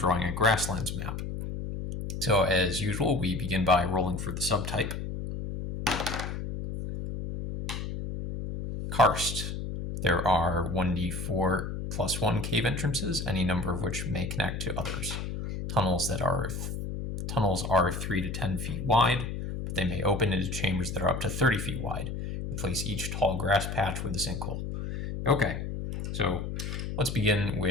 a Grasslands map. So as usual, we begin by rolling for the subtype. Karst. There are 1d4 plus 1 cave entrances, any number of which may connect to others. Tunnels are 3 to 10 feet wide, but they may open into chambers that are up to 30 feet wide. Replace each tall grass patch with a sinkhole. Okay, so let's begin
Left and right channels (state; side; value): noise; left; hum, 5 dB below the sound